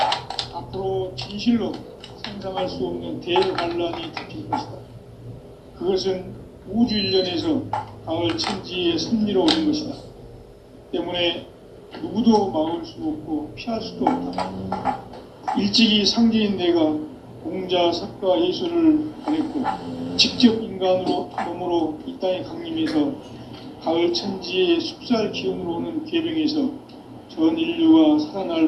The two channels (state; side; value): identical; both; correlation 1.00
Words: 앞으로 진실로 상상할 수 없는 대환란이 닥칠 것이다. 그것은 우주 일련에서 가을 천지의 섭리로 오는 것이다. 때문에 누구도 막을 수 없고 피할 수도 없다. 일찍이 상제인 내가 공자, 석가, 예수를 보냈고 직접 인간으로 몸으로 이 땅에 강림해서 가을 천지의 숲살 기운으로 오는 계병에서 전 인류가